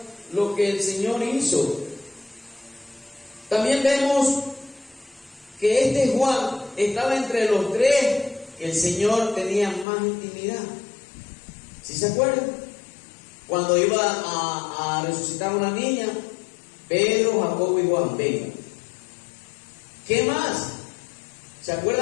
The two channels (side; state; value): right; drops out; at 9.9 s